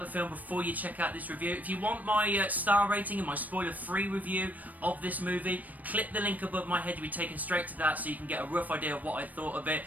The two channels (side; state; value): left; late; 0.078 ms